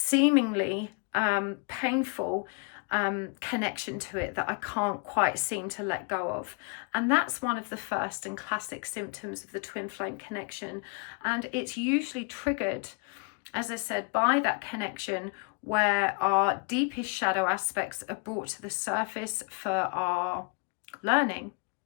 painful connection to it that I can't quite seem to let go of. And that's one of the first and classic symptoms of the twin flame connection. And it's usually triggered, as I said, by that connection where our deepest shadow aspects are brought to the surface for our learning.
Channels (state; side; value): quieter; right; 34.8 dB